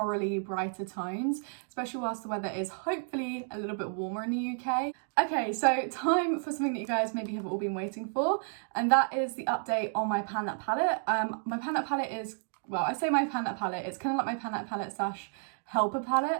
brighter tones, especially whilst the weather is hopefully a little bit warmer in the UK. Okay, so time for something that you guys maybe have all been waiting for, and that is the update on my Pan That palette. My Pan That palette is, well, I say my Pan That palette, it's kind of like my Pan That palette slash helper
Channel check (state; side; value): silent; left; 57 dB below the other